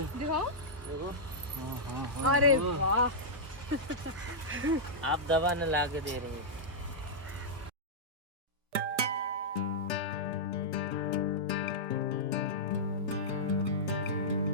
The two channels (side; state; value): left; late; 1.3 ms